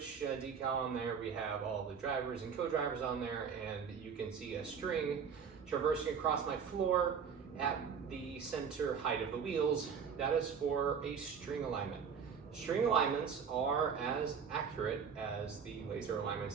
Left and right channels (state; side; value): quieter; left; 6.6 dB